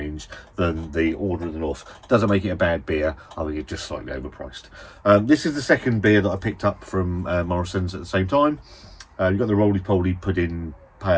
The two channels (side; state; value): both; identical; correlation 1.00